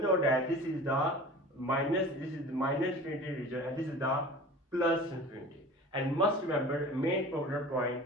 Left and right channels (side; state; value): both; normal; correlation 0.39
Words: that this is the minus infinity region, and this is the plus infinity. And must remember main problem point,